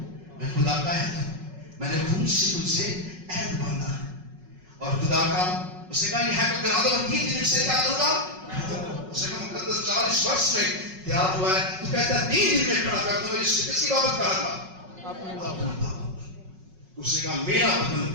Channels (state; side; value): late; left; 5.4 ms